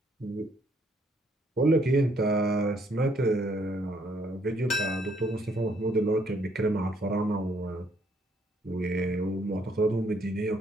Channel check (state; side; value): normal; both; correlation 0.68